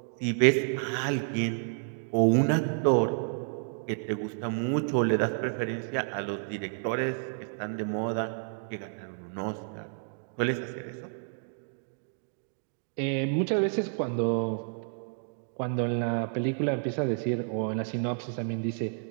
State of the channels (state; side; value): silent; left; digital silence